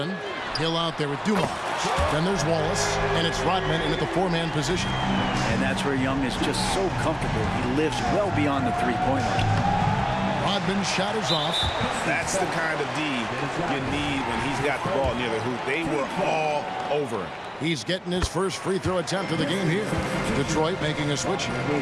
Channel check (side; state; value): both; identical; correlation 1.00